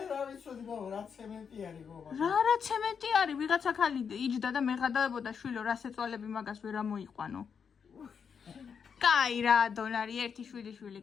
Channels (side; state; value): right; quieter; 6.7 dB